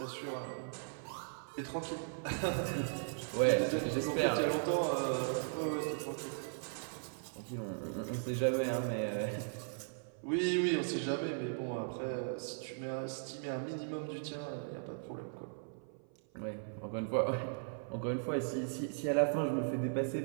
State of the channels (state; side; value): silent; left; 53 dB below the other